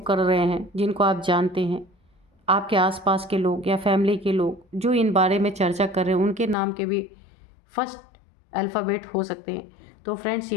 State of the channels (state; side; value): drops out; right; at 6.6 s